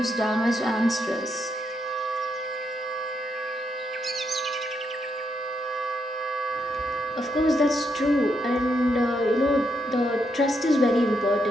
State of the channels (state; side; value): normal; both; correlation 0.79